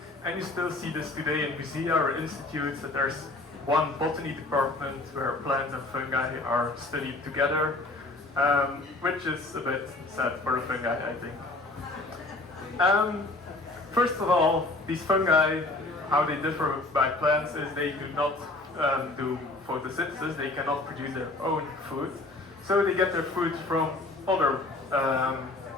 and you still see this today in musea or institutes, that there's one botany department where plants and fungi are studied together, which is a bit sad for the fungi, I think. First of all, these fungi, how they differ by plants is they do not do photosynthesis, they cannot produce their own food, so they get their food from other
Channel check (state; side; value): quieter; right; 3.0 dB